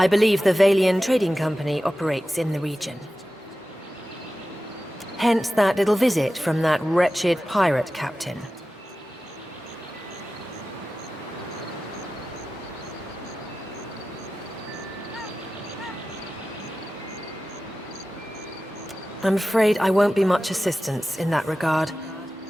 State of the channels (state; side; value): normal; both; correlation 0.94